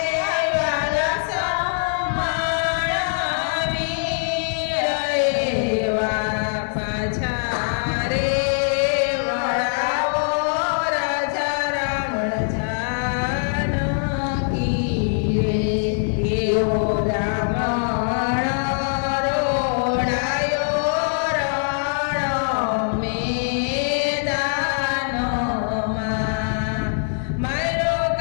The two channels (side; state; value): right; silent; 61 dB below the other